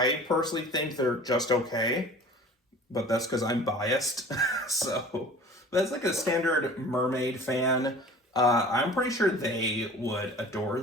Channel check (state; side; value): normal; both; correlation 0.43